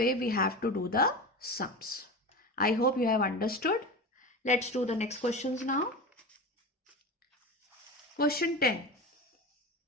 we have to do the sums. I hope you have understood. Let's do the next questions now. Question 10.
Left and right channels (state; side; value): normal; both; correlation 0.27